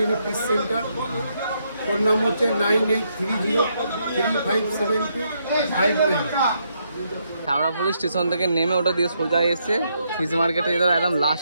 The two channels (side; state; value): both; inverted; correlation -0.77